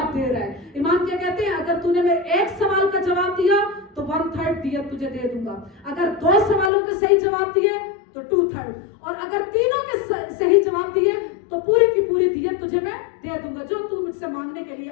دے رہا ہے. امام کیا کہتے ہیں, اگر تو نے میرے ایک سوال کا جواب دیا تو 1/3 دیت تجھے دے دوں گا, اگر 2 سوالوں کے صحیح جواب دیے تو 2/3, اور اگر تینوں کے صحیح جواب دیے تو پوری کی پوری دیت تجھے میں دے دوں گا جو تو مجھ سے مانگنے کے لیے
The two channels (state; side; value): drops out; right; at 6.7 s